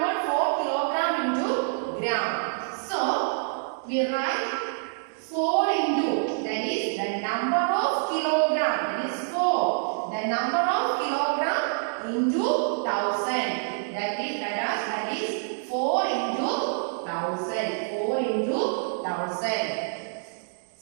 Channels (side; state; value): left; silent; digital silence